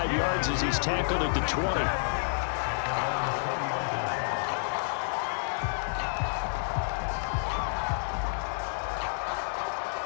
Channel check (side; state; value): right; silent; 58 dB below the other